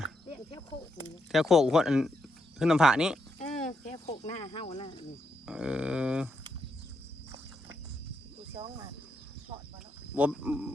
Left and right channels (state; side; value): normal; both; correlation 0.80